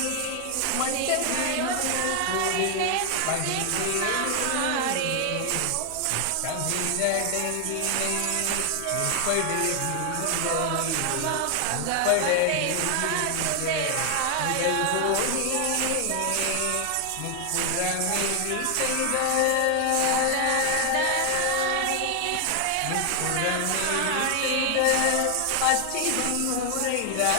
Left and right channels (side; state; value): both; different; correlation 0.00